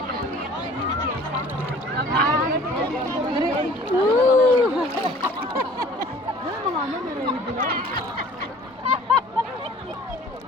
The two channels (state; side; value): normal; both; correlation 0.50